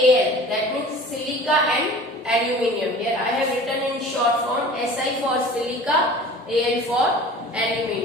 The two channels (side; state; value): both; normal; correlation 0.42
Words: that means silica and aluminium. Here I have written in short form Si for silica, Al for